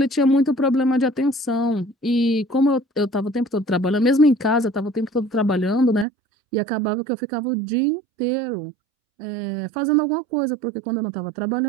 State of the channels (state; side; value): drops out; left; at 6.1 s